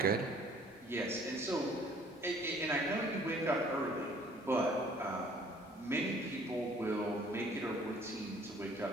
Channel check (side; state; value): both; normal; correlation 0.57